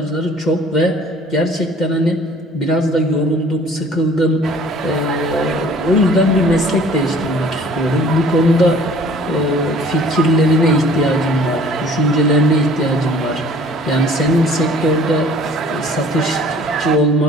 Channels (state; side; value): normal; both; correlation 0.51